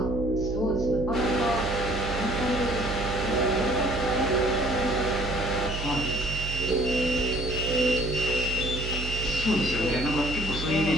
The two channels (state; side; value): noise; right; hum, 6 dB below the sound